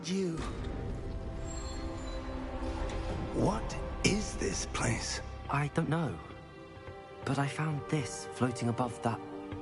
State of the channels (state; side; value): identical; both; correlation 1.00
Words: you... What is this place? I don't know. But I found this floating above that